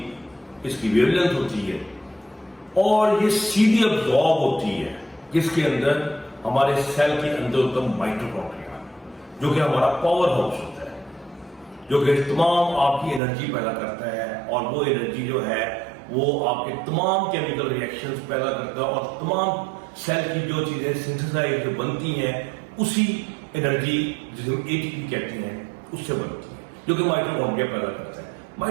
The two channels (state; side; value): drops out; left; at 13.2 s